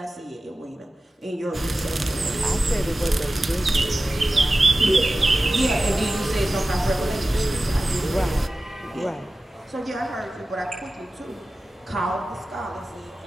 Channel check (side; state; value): both; normal; correlation 0.95